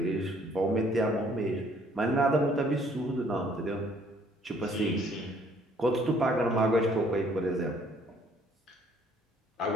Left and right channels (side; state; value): both; normal; correlation 0.62